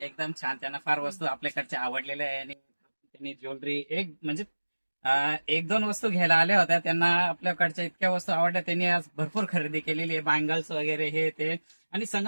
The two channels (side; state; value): both; inverted; correlation -1.00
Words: छान. त्यांना फार वस्तू आपल्याकडच्या आवडलेल्या आहे आणि त्यांनी ज्वेलरी म्हणजे एक दोन वस्तू घ्यायला आल्या होत्या. त्यांना आपल्याकडच्या इतक्या वस्तू आवडल्या. त्यांनी आज भरपूर खरेदी केलेली आहे. बँगल्स वगैरे हे ते. आणि